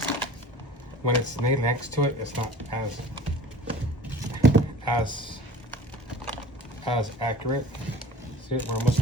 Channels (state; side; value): normal; both; correlation 0.44